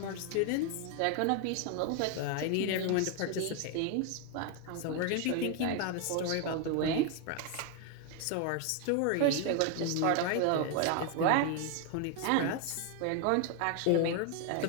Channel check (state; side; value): different; both; correlation 0.01